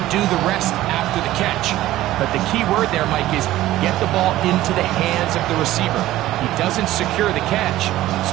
do the rest after the catch. But the key word there, Mike, is get the ball into the hands of the receiver. He doesn't secure the catch,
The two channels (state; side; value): quieter; left; 15.2 dB